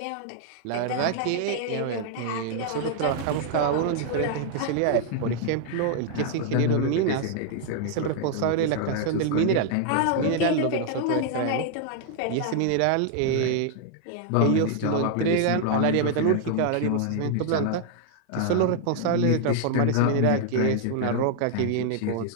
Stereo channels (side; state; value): both; different; correlation 0.00